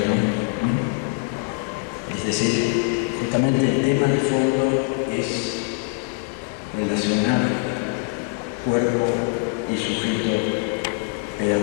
Es decir, justamente el tema de fondo es relacionar cuerpo y sujeto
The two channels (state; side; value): quieter; right; 34.4 dB